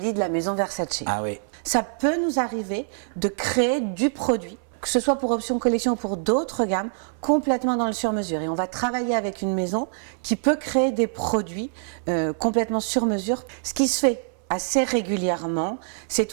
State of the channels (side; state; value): left; silent; 58 dB below the other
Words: de la maison Versace. Ah oui. Ça peut nous arriver de créer du produit, que ce soit pour Option collection ou pour d'autres gammes, complètement dans le sur-mesure. Et on va travailler avec une maison qui peut créer des produits complètement sur-mesure. Ce qui se fait assez régulièrement, c'est